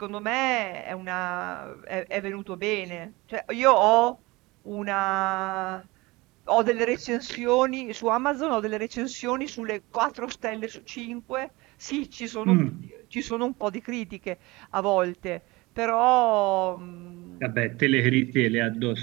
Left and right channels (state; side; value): quieter; left; 22.5 dB